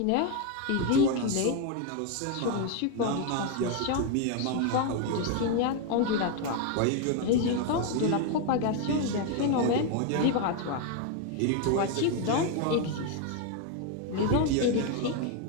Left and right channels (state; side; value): different; both; correlation 0.01